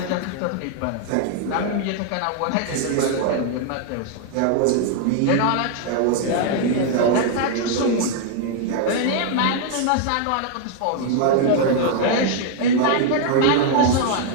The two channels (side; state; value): both; different; correlation 0.00